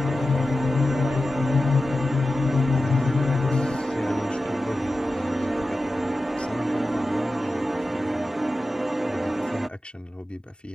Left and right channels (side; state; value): both; normal; correlation 0.93